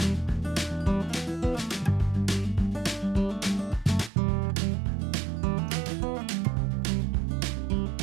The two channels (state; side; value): drops out; left; at 4.1 s